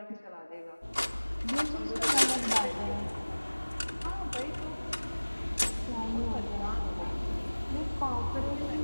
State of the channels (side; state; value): both; inverted; correlation -1.00